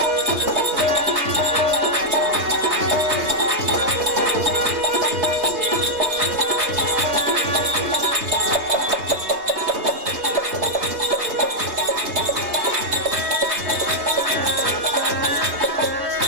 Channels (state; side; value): late; left; 3.2 ms